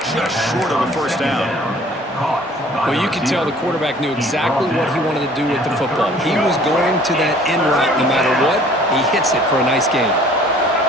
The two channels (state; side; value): normal; both; correlation 0.53